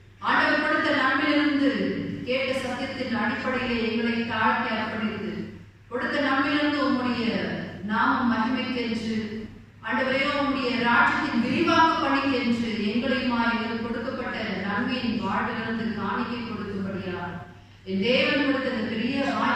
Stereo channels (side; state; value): both; identical; correlation 1.00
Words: ஆண்டவர் கொடுத்த நன்மையிலிருந்து கேட்ட சத்தியத்தின் அடிப்படையிலே எங்களை தாழ்த்தி அர்ப்பணித்து கொடுத்த நன்மையிலிருந்து உம்முடைய நாமம் மகிமைக்கென்று ஆண்டவரே உம்முடைய ராஜ்யத்தின் விரிவாக்க பணிக்கென்று எங்களையுமா எங்களுக்கு கொடுக்கப்பட்ட நன்மையின் வாழ்விலிருந்து காணிக்கை கொடுக்கும்படியா என் தேவன் கொடுத்த இந்த பெரிய